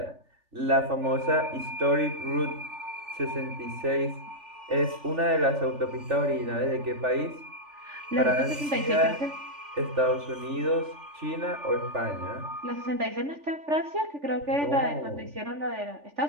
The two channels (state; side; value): late; left; 3.4 ms